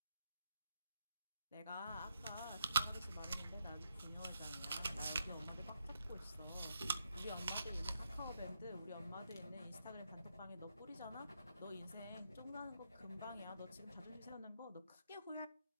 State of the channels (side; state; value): both; inverted; correlation -0.78